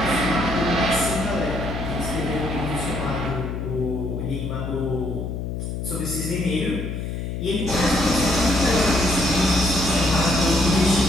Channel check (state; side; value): noise; left; hum, 5 dB below the sound